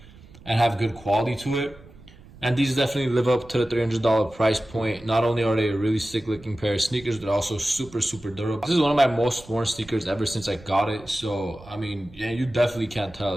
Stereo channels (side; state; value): right; noise; rumble, 22 dB below the sound